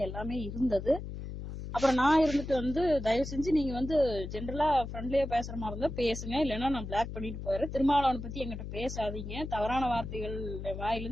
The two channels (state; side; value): noise; left; hum, 8 dB below the sound